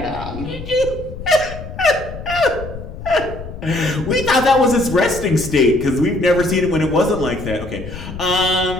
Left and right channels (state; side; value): noise; left; rumble, 11 dB below the sound